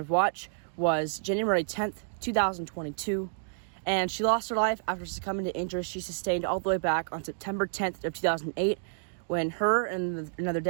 of watch was January 10th, 2022, and she lost her life after succumbing to injuries she sustained all the way back on September 10th of 2008, when her and another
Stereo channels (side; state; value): left; silent; digital silence